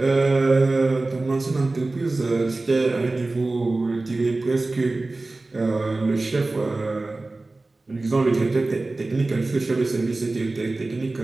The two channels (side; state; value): left; quieter; 3.2 dB